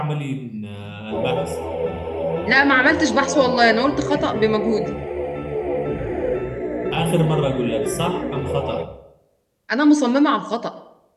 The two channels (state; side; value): identical; both; correlation 1.00